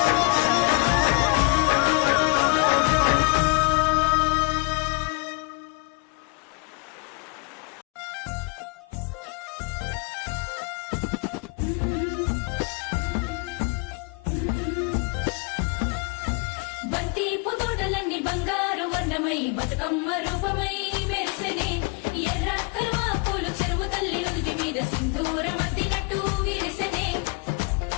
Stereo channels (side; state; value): right; quieter; 32.5 dB